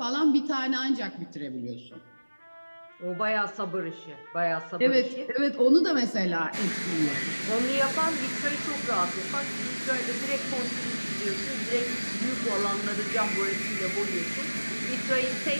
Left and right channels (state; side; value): inverted; both; correlation -1.00